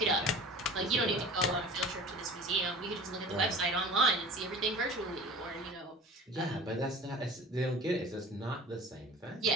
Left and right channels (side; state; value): both; normal; correlation 0.40